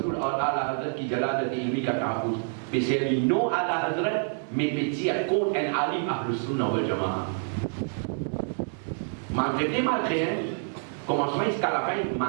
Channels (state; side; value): silent; left; 60 dB below the other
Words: और आला हजरत की जलालत इल्मी का तहफ़्फ़ुज़ बेशर्मी नो आला हजरत में पेचिया कौन एन आलिम अहले सुन्नत वल जमाअह malgré commencement jusqu'à la fin